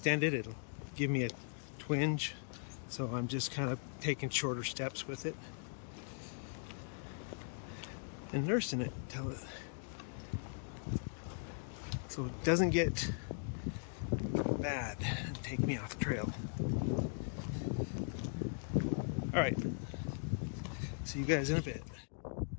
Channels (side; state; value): right; silent; digital silence